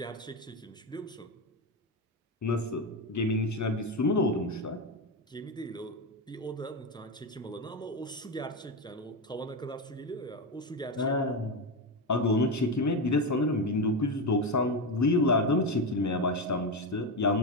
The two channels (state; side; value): normal; both; correlation 0.14